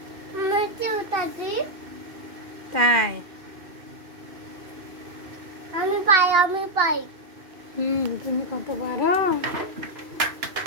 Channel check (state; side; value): late; left; 2.8 ms